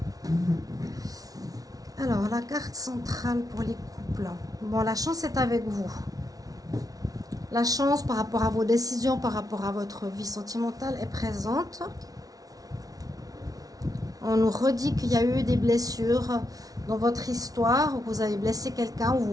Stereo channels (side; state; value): left; late; 0.18 ms